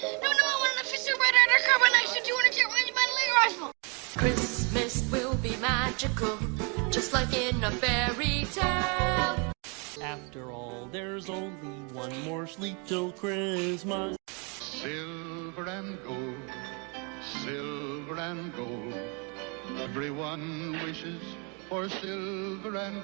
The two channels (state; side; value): quieter; left; 34.0 dB